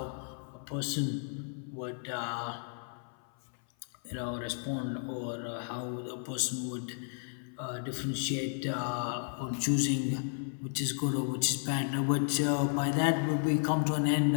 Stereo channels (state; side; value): silent; right; 56 dB below the other